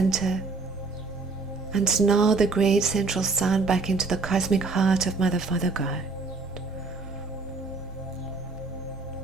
and now the great central sun back into the cosmic heart of Mother, Father, God.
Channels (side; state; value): left; quieter; 3.9 dB